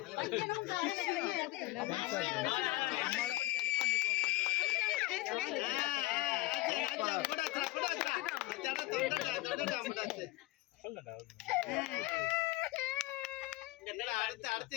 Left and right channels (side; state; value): right; quieter; 18.1 dB